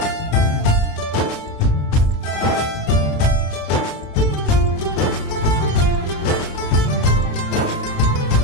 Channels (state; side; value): late; right; 27 ms